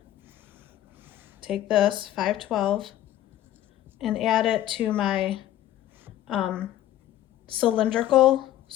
take this, 512, and add it to my cylindrical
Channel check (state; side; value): quieter; right; 12.9 dB